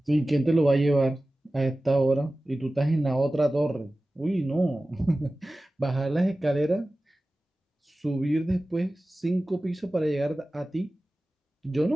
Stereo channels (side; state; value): both; normal; correlation 0.96